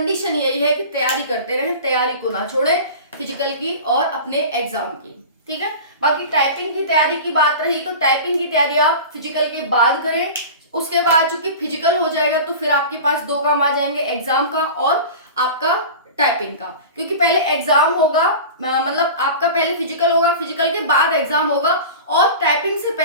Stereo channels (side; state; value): both; inverted; correlation -0.34